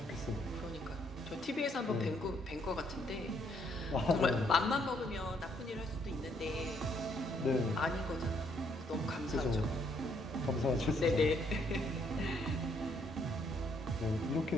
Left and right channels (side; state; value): both; normal; correlation 0.70